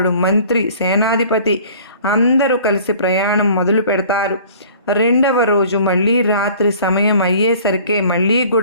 మంత్రి సేనాధిపతి అందరూ కలిసి ప్రయాణం మొదలు పెడతారు. 2వ రోజు మళ్ళీ రాత్రి సమయం అయ్యేసరికి మళ్ళీ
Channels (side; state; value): both; inverted; correlation -0.49